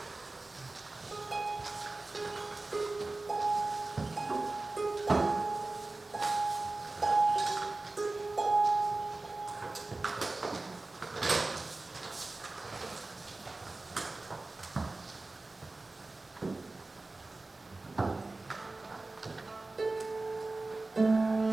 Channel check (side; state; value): left; quieter; 3.2 dB